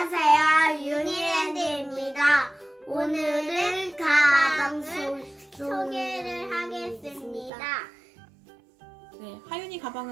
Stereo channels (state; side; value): drops out; left; at 7.5 s